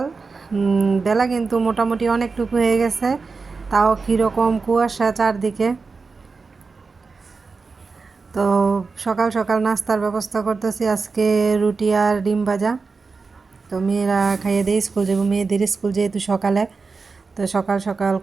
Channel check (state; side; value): quieter; left; 4.5 dB